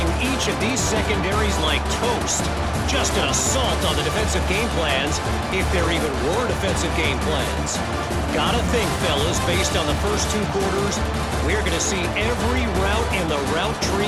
each of these secondaries like toast. Just an assault on the defensive game plans, if there even were defensive game plans. Gotta think, fellas, based on the first 2 quarters, we're going to see every route in the route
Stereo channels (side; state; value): both; identical; correlation 1.00